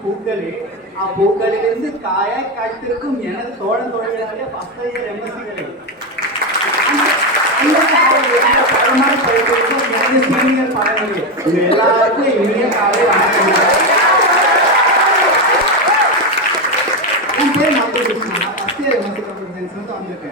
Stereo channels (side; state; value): both; normal; correlation 0.10